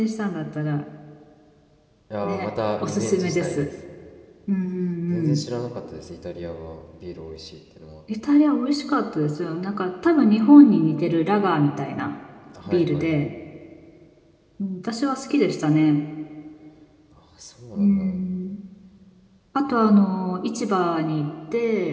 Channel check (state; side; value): identical; both; correlation 1.00